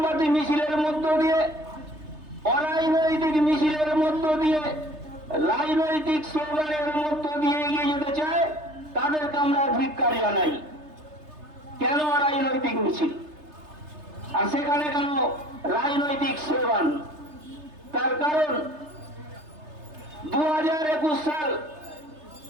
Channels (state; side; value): late; left; 3.3 ms